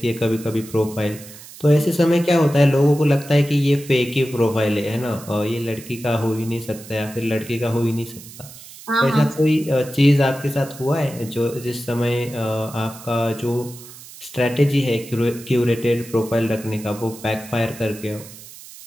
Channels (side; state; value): right; noise; hiss, 17 dB below the sound